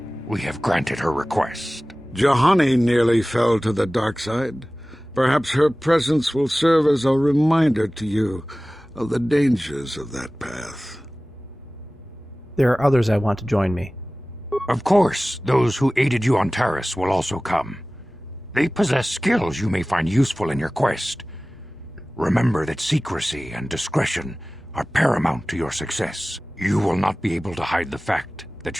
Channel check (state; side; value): normal; both; correlation 0.97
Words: we have granted her request. Juhani nearly fell to the dark side. Perhaps her presence will serve as a reminder to you of the dangers of that path. There are others I want to join me. Of course, those who aided you on Taris will also come. They possess skills you may find useful in your quest. Remember that secrecy and discretion are paramount to your success. You will not be able to hide the fact that